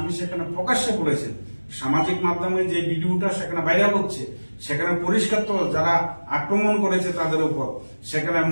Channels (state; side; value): inverted; both; correlation -1.00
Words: সেখানে প্রকাশ্যে বলেছেন, সামাজিক মাধ্যমে যে ভিডিওটা সেখানে ভাইরাল হচ্ছে সেখানে পরিষ্কার তো যারা আক্রমণ করেছে তাদের উপর, সেখানে